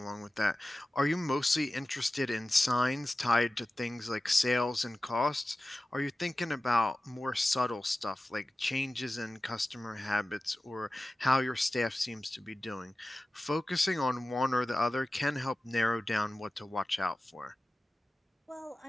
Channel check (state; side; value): normal; both; correlation 0.95